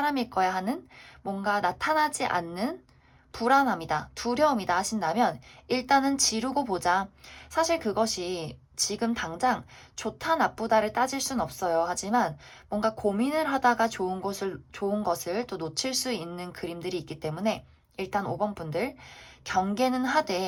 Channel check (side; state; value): both; identical; correlation 1.00